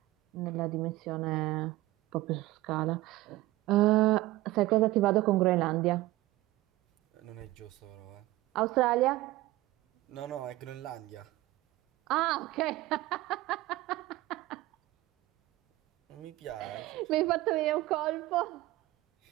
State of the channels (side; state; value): left; quieter; 17.6 dB